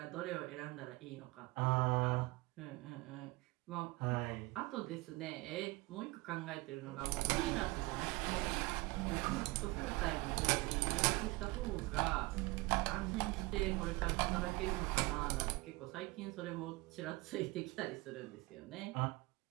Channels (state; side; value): quieter; left; 22.9 dB